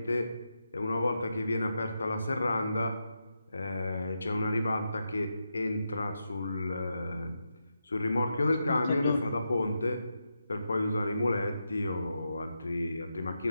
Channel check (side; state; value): both; inverted; correlation -0.86